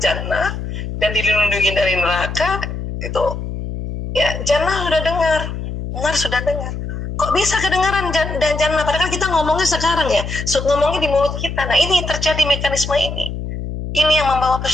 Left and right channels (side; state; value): left; noise; hum, 6 dB below the sound